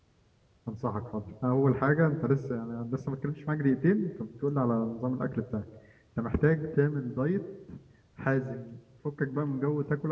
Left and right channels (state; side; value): identical; both; correlation 1.00